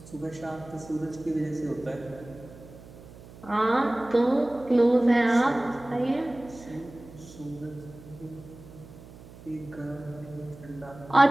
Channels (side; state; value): right; noise; hum, 19 dB below the sound